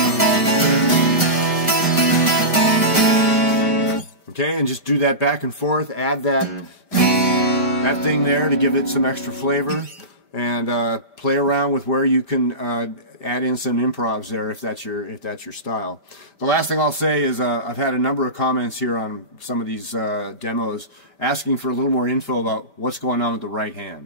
Okay, and just do that back and forth, add that thing there to give it some extra flavor, and play around with where you can add in some improvs there if that's your style. The last thing I'll say is I've had a number of comments here on some of these demos asking for a little more info about what's going on with the right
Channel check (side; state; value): right; late; 5.1 ms